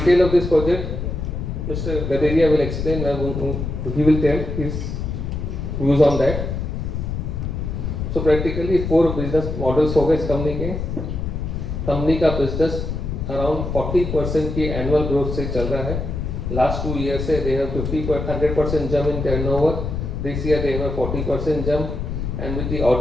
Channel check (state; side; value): noise; left; rumble, 4 dB below the sound